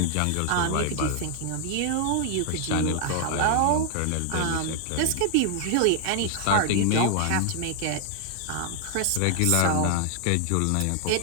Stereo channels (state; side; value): different; both; correlation 0.00